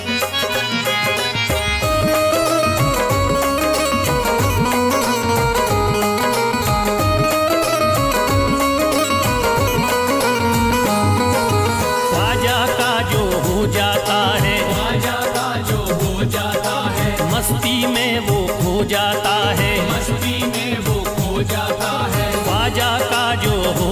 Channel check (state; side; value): identical; both; correlation 1.00